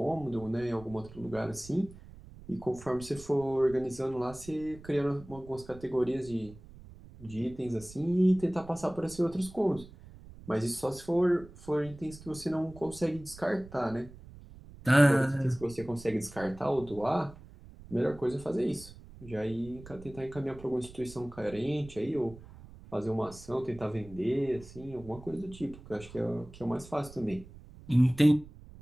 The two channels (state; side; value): noise; right; rumble, 18 dB below the sound